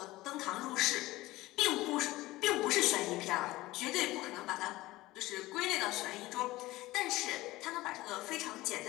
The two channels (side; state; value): right; quieter; 18.3 dB